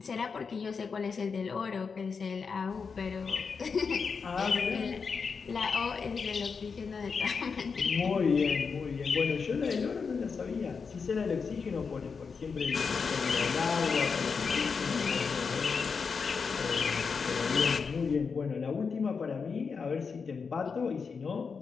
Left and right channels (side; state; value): right; quieter; 5.4 dB